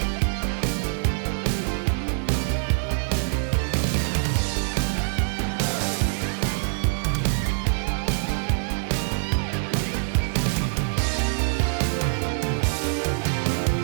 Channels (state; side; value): silent; left; digital silence